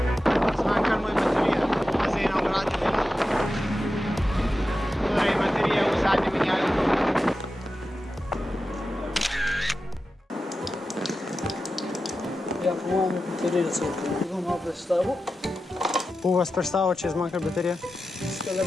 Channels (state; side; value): normal; both; correlation 0.92